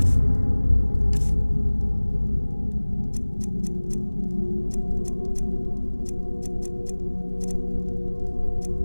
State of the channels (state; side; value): inverted; both; correlation -1.00